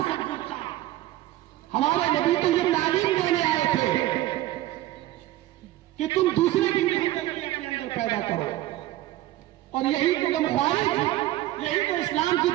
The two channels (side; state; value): left; quieter; 15.5 dB